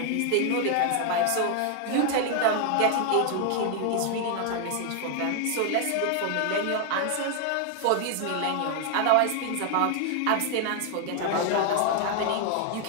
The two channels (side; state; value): both; different; correlation 0.00